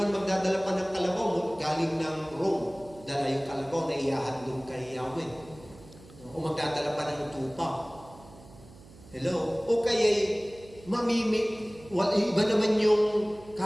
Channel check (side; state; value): right; noise; hum, 22 dB below the sound